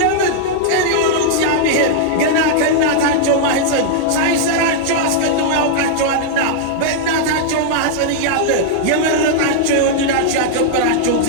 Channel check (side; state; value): both; different; correlation -0.01